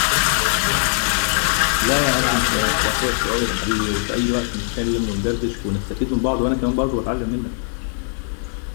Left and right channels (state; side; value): silent; right; 65 dB below the other